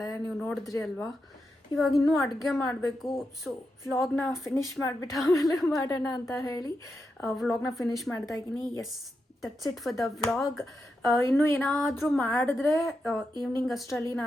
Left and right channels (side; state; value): both; normal; correlation 0.86